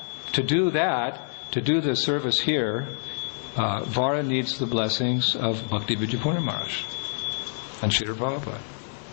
do the service here, Vara needs the blessings of Bhakti Vijayapurna Maharaj and Srila Prabhupada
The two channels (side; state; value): right; silent; 61 dB below the other